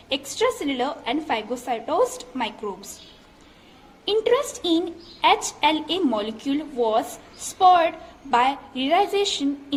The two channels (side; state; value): both; identical; correlation 1.00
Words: extracellular and phagocytosed microbes. Interest in HLA molecule was spurred by realization